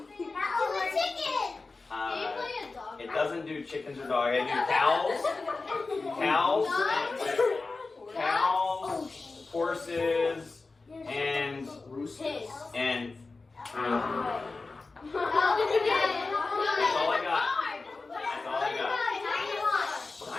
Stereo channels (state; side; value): quieter; right; 3.8 dB